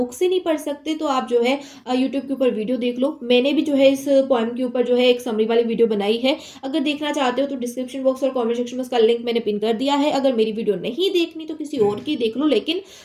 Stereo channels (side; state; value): both; identical; correlation 1.00